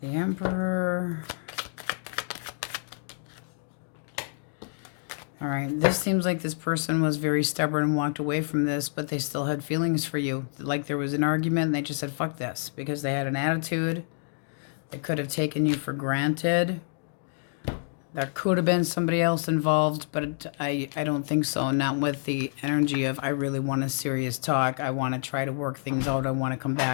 The Emperor. All right, this seems like this person was very stubborn and walked away from this, but they still had feelings for you. Like there was an argument and they just said, fuck this, because they had an attitude. They could have taken you for granted. There could have been somebody else involved, but I don't think so. Not with the energy of, I really want a serious talk. I want to try to work things out. I want to come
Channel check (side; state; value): right; silent; digital silence